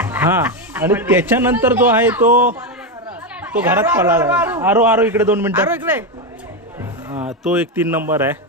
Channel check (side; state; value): both; normal; correlation 0.09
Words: हा आणि त्याच्यानंतर जो आहे तो घरात पळाला. आरो इकडे 2 मिनिटं. हा तो एक 3 नंबर आहे.